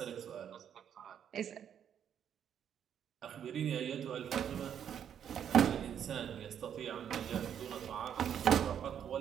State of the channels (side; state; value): left; quieter; 8.9 dB